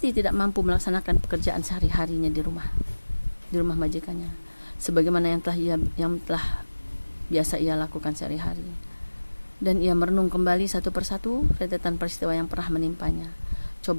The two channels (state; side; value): inverted; both; correlation -1.00